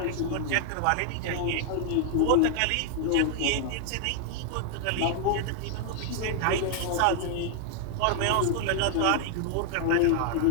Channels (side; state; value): both; different; correlation 0.00